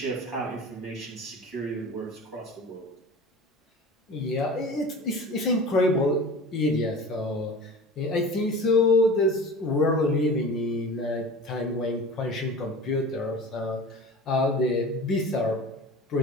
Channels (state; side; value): normal; both; correlation 0.37